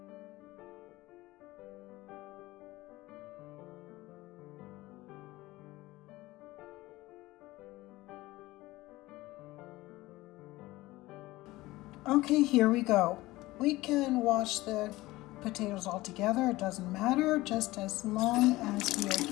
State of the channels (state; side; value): quieter; right; 18.8 dB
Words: Okay, here we go. We can wash the potatoes all together. It doesn't matter, just as long as we are